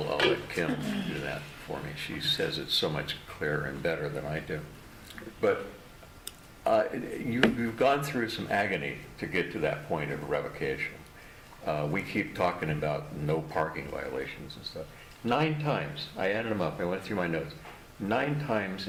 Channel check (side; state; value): both; identical; correlation 1.00